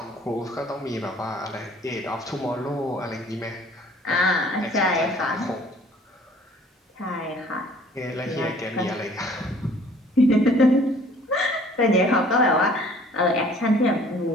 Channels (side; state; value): both; normal; correlation 0.54